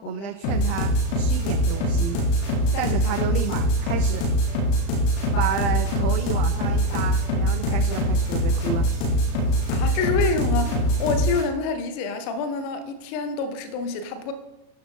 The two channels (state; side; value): late; right; 36 ms